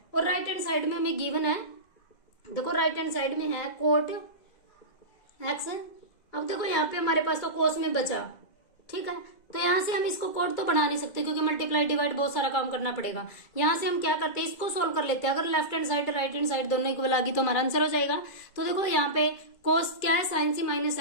और राइट हैंड साइड में हमें गिवन है, देखो राइट हैंड साइड में है कोट एक्स। अब देखो यहाँ पे हमारे पास तो कोस में बचा, ठीक है, तो यहां से हम इसको कोट तो बना नहीं सकते क्योंकि मल्टीप्लाई डिवाइड बहुत सारा काम करना पड़ेगा। यहां से हम क्या करते हैं इसको सोल्व कर लेते हैं, अगर left hand side right hand side दोनों इक्वल आ गई तो हमारा आंसर हो जाएगा। तो देखो यहाँ पे कोस क्या है साइन सी minus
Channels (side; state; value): right; late; 2.0 ms